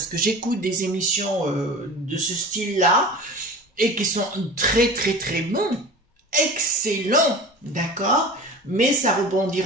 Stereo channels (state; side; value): normal; both; correlation 0.36